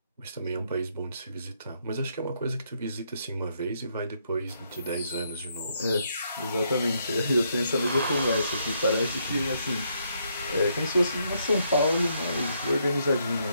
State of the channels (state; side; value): inverted; both; correlation -0.74